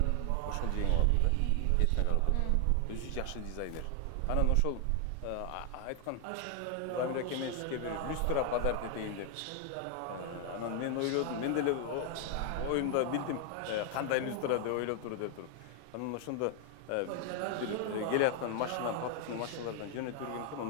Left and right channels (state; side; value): different; both; correlation 0.00